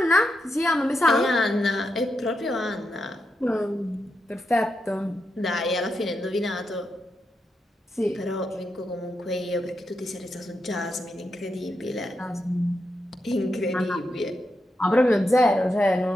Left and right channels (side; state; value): both; normal; correlation 0.85